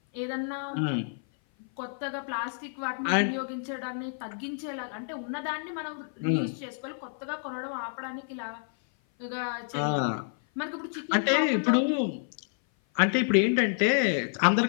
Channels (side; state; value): right; silent; 56 dB below the other